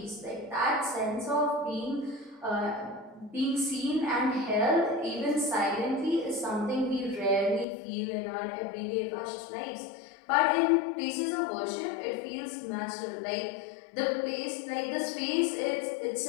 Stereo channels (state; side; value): drops out; right; at 7.7 s